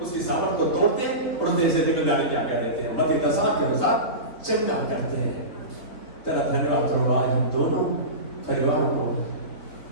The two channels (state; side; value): late; right; 3.5 ms